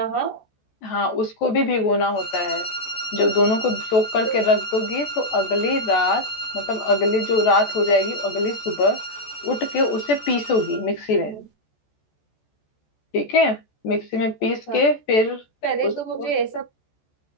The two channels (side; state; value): right; late; 14 ms